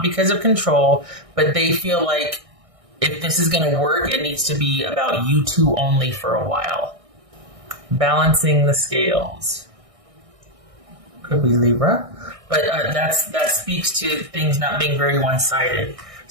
because of control, but they feel like if this is going to work, it needs to be about you two only for a while. Balancing the scales. Could be Libra. But that speaks to things not being very one-sided.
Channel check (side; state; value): left; late; 1.6 ms